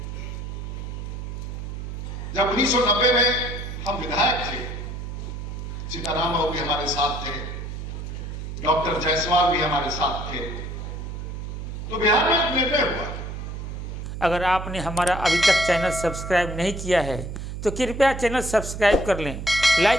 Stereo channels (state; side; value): noise; right; hum, 7 dB below the sound